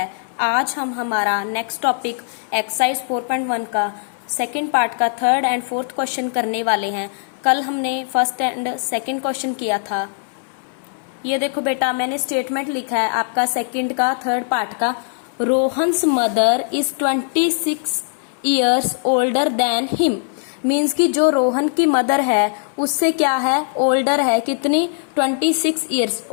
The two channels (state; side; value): silent; right; 65 dB below the other